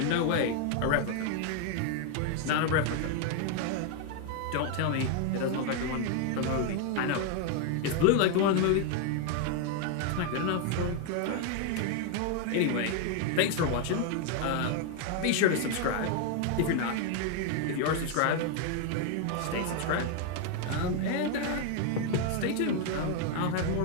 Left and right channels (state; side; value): different; both; correlation 0.01